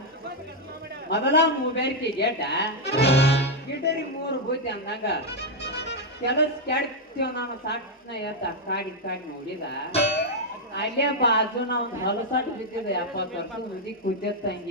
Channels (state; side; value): normal; both; correlation 0.00